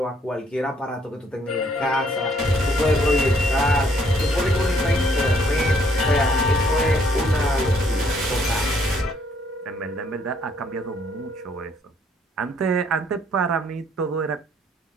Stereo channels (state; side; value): normal; both; correlation 0.66